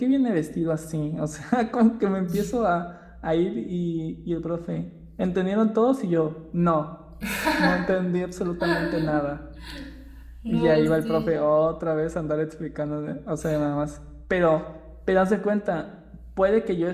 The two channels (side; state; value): both; identical; correlation 1.00